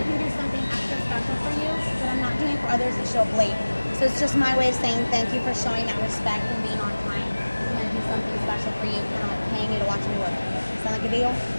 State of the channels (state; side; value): inverted; both; correlation -1.00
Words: can do something extra special for you that I'm not doing for others that show up late. So it's just my way of saying thank you for showing that respect and being on time. I'm going to do something special for you, kind of like paying you to watch me work. Sound like a deal?